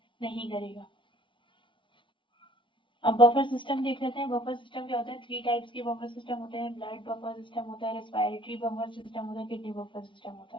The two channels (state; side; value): late; right; 0.24 ms